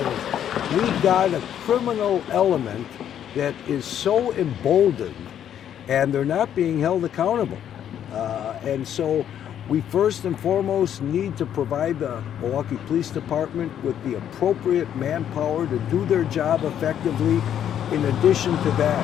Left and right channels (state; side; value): quieter; right; 9.9 dB